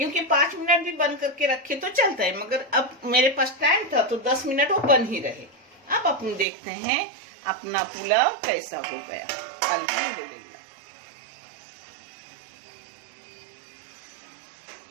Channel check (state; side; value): drops out; left; at 6.5 s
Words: 5 मिनट भी बंद करके रखे तो चलता है, मगर अब मेरे पास टाइम था तो 10 मिनट वो बंद ही रहे। अब अपन देखते हैं अपना पुलाव कैसा हो गया। अल्हम्दुलिल्लाह।